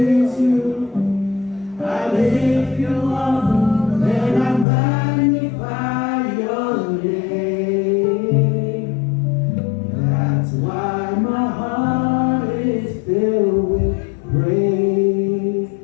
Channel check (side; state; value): right; drops out; at 4.7 s